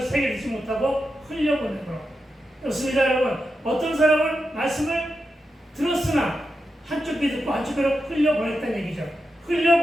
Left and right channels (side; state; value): both; normal; correlation 0.88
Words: 새겨듣지 못하고 흘려보내므로 그렇습니다. 여러분 어떤 사람은 말씀을 들었으나 한쪽 귀 듣고 한쪽 귀로 흘려보냈다는 얘기죠.